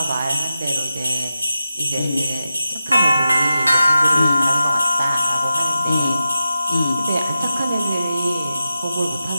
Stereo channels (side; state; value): both; inverted; correlation -0.89